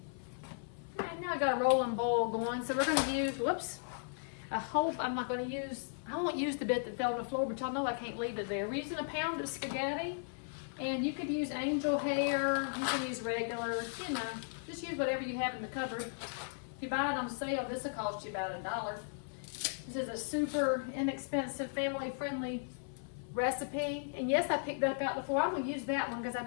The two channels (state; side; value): silent; right; 54 dB below the other